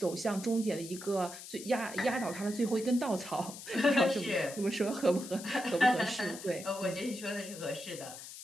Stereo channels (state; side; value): noise; left; hiss, 12 dB below the sound